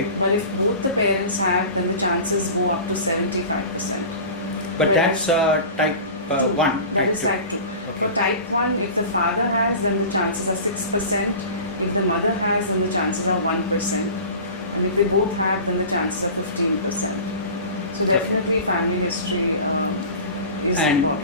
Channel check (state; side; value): inverted; both; correlation -0.36